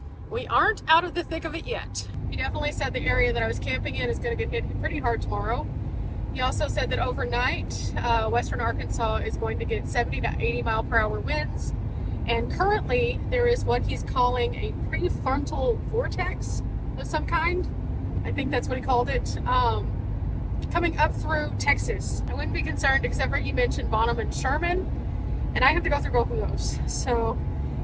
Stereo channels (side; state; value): both; identical; correlation 1.00